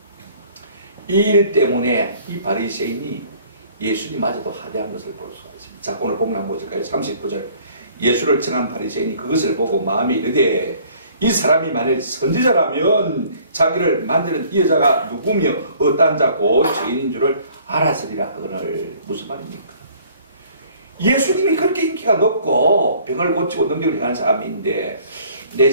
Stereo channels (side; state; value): both; inverted; correlation -0.55